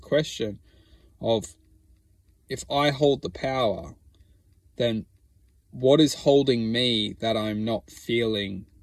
of, if I hold the power, then what is holding me that I'm not feeling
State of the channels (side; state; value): both; identical; correlation 1.00